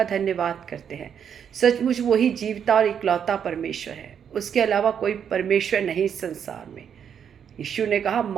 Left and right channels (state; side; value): quieter; left; 8.0 dB